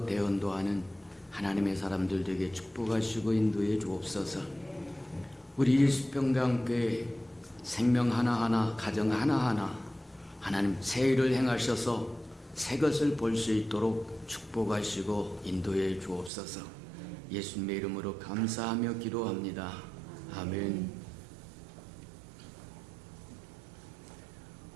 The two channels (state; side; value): drops out; left; at 16.3 s